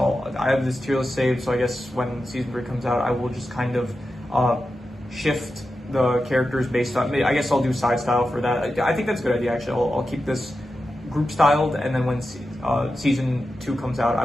have this tier list saved. So I guess when season 3 comes out, I will just kind of shift the characters based on, I guess I'll do side style for that. I think that's a good idea, actually. I'll keep this group styled, and then when season 2 comes out, I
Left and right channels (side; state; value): both; normal; correlation 0.91